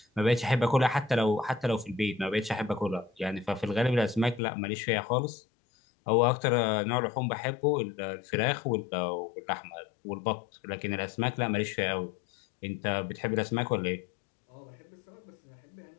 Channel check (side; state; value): right; drops out; at 4.4 s